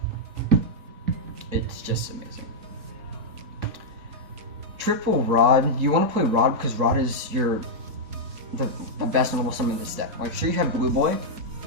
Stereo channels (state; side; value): late; left; 4.6 ms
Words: it's just amazing. Triple Rod. You want to play Rod because Rod is the best normal summon in this deck. Like, sure, you have Blue Boy,